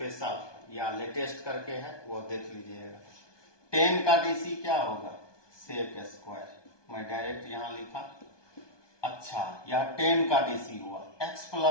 या लेटेस्ट करके है वो देख लीजिएगा। 10 का डीसी क्या होगा, सेक स्क्वायर, मैं डायरेक्ट यहां लिखा। अच्छा यह 10 का डीसी हुआ, x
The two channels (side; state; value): right; late; 1.2 ms